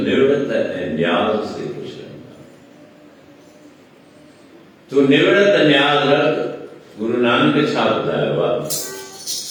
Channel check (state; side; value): identical; both; correlation 1.00